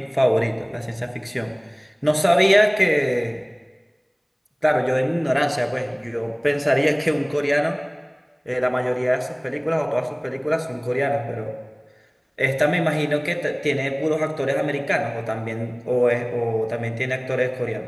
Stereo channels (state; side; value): identical; both; correlation 1.00